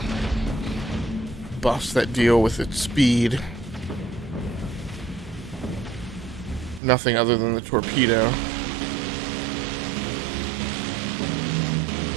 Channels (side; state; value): left; drops out; at 6.8 s